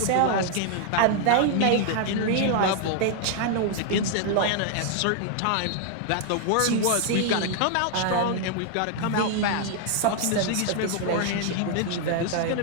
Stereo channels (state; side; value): different; both; correlation 0.00